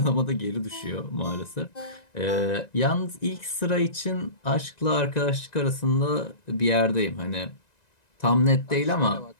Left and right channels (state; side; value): late; right; 1.9 ms